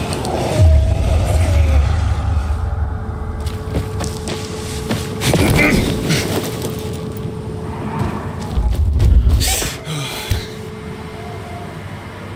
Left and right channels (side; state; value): both; identical; correlation 1.00